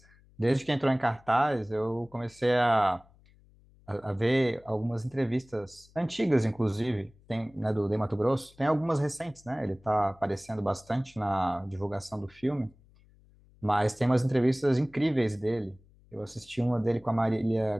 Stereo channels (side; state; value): left; noise; hum, 28 dB below the sound